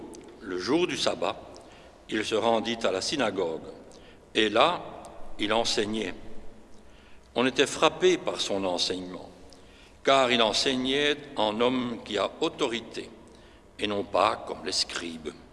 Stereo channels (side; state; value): both; identical; correlation 1.00